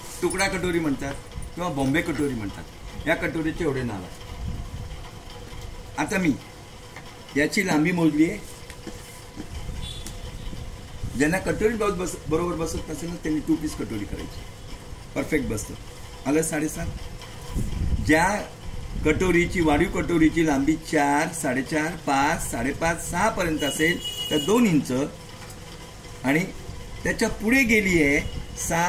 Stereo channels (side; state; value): both; identical; correlation 1.00